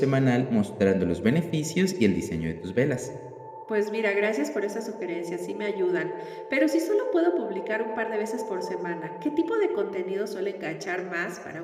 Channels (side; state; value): both; identical; correlation 1.00